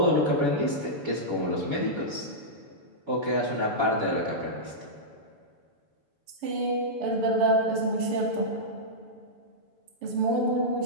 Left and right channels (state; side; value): late; left; 7.0 ms